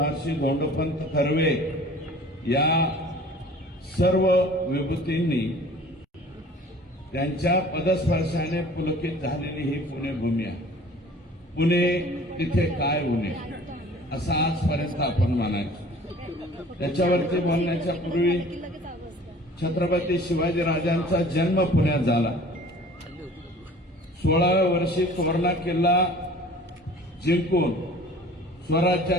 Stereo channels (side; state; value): both; normal; correlation 0.47